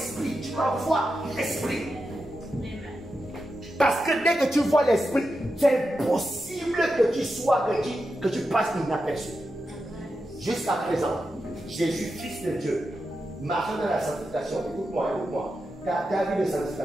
Tu dois voir l'esprit. Parce que dès que tu vois l'esprit, c'est impossible que tu sois, que tu passes inaperçu. Jusqu'à présent, Jésus, Fils de Dieu, marchant dans la sanctification. Écoute-moi, écoute-moi. Ta vie de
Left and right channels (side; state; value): both; normal; correlation 0.89